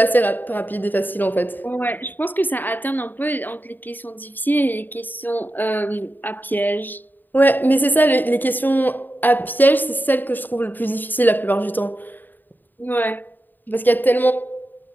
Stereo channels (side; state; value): right; late; 0.089 ms